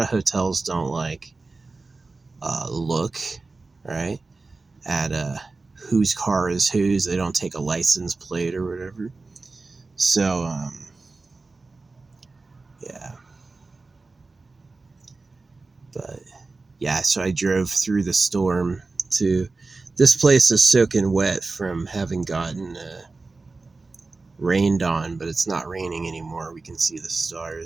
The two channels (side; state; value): left; quieter; 3.7 dB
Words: of hotels don't like look right at whose car is whose. They don't take a license plate or whatever. So yeah, but yeah, so I drove through the storm to this place is soaking wet from having gotten rained on, but it's not raining anymore. We can see the